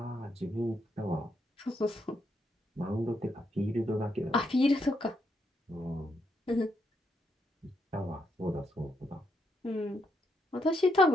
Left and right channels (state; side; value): normal; both; correlation 0.78